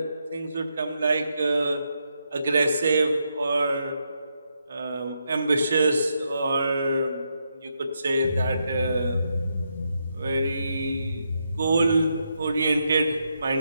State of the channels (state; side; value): inverted; both; correlation -0.81